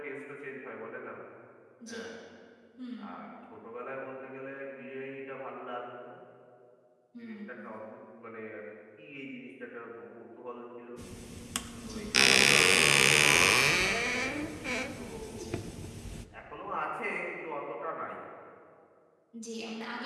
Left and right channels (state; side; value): identical; both; correlation 1.00